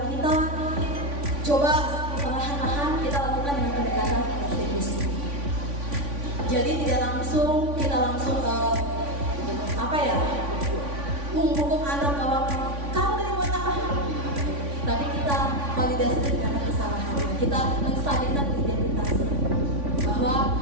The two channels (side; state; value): left; late; 3.5 ms